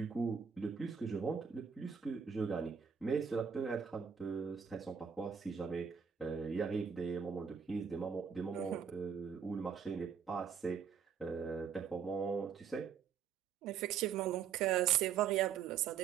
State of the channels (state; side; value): quieter; left; 7.1 dB